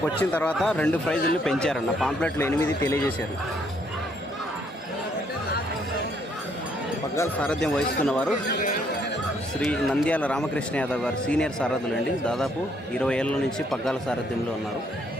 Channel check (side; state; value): both; normal; correlation 0.69